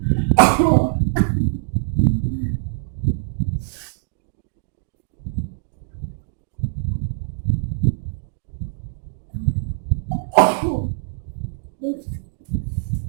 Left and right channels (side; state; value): left; silent; digital silence